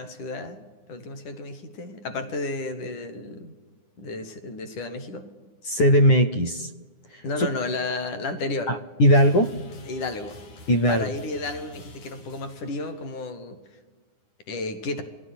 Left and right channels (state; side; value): late; right; 9.8 ms